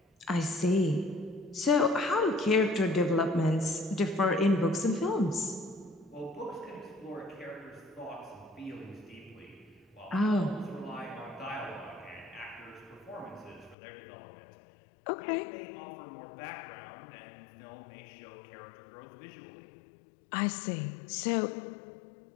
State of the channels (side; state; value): right; drops out; at 13.8 s